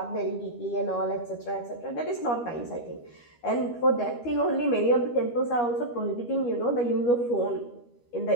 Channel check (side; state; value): right; late; 13 ms